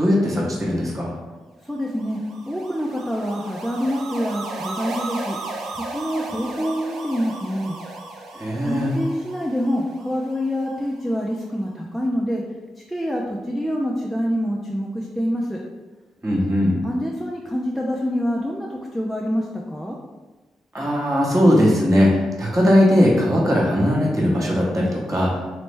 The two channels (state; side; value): normal; both; correlation 0.91